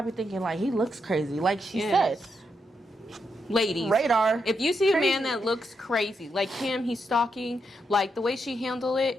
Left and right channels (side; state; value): both; normal; correlation 0.82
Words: thinking, like, he looks crazy. Like she said. Ladies. Radar. If you see a man that looks crazy, like him, he's stalking, like the way she handled